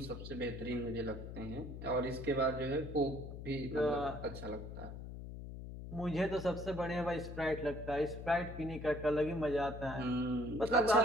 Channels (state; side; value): noise; left; hum, 9 dB below the sound